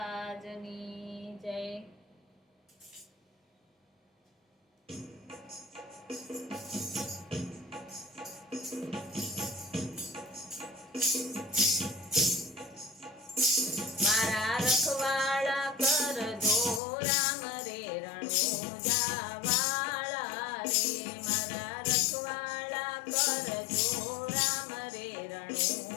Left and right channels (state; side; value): drops out; right; at 16.8 s